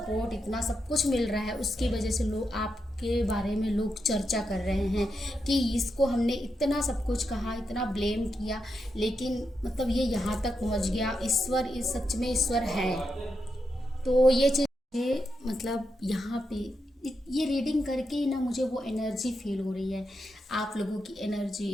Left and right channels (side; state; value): both; normal; correlation 0.85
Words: इतना सब कुछ मिल रहा है, उसकी वजह से लोग आपके बारे में लोग चर्चा कर रहे हैं कि इसको हमने इतना सब कुछ कहा, इतना ब्लेम किया, लेकिन मतलब ये यहाँ तक पहुँच गया। ईश्वर इस सच में ईश्वर है। तो ये चीज़ मतलब यहाँ पे ये रीडिंग करके ना मुझे वो एनर्जी फील हो रही है, आप लोगों की